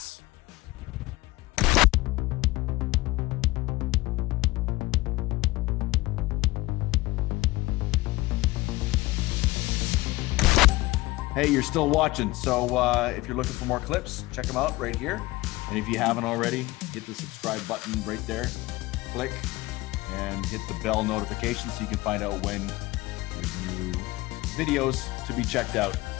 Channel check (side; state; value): right; quieter; 19.9 dB